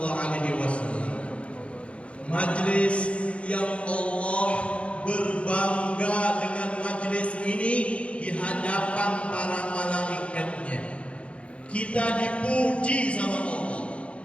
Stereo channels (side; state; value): right; late; 0.061 ms